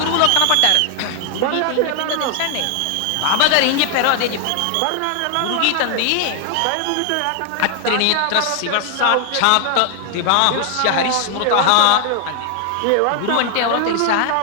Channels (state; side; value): different; both; correlation 0.00